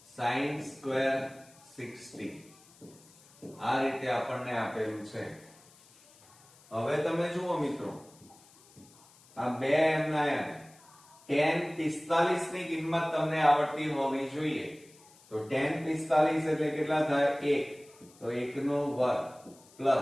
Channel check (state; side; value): noise; left; hiss, 26 dB below the sound